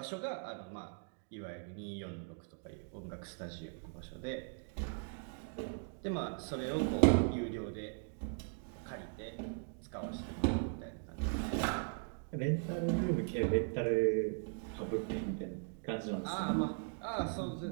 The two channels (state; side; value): silent; left; 52 dB below the other